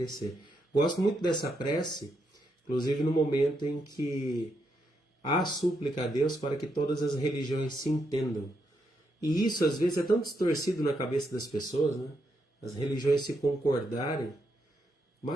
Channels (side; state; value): both; normal; correlation 0.80